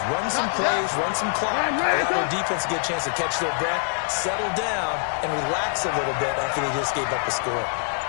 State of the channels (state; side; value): silent; right; digital silence